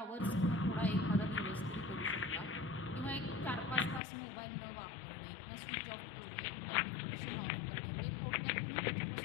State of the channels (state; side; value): drops out; right; at 4.0 s